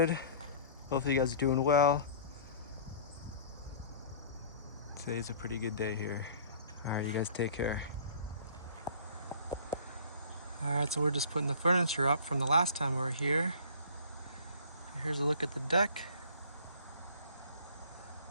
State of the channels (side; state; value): both; inverted; correlation -0.47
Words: Hopefully you guys are doing well. Today's a pretty good day here. All right, you guys take care. All right, so we're just putting the furniture up from the last time we were here. Here's a look at the deck.